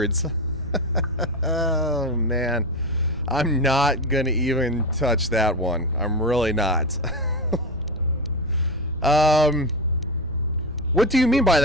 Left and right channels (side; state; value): both; normal; correlation 0.16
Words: Oh, man. I'm not going to even touch that one. I'm really not. What do you mean by